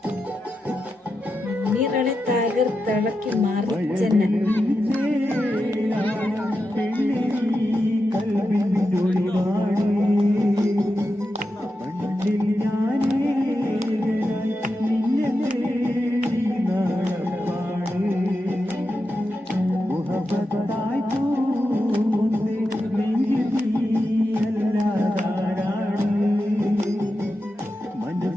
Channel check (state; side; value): normal; both; correlation 0.89